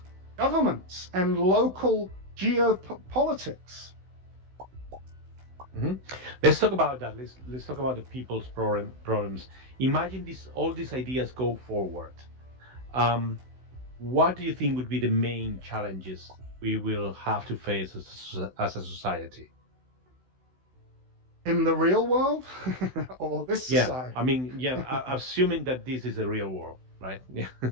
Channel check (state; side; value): late; left; 16 ms